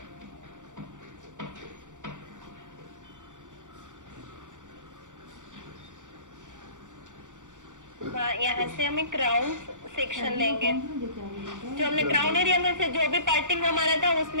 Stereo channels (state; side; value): late; left; 0.86 ms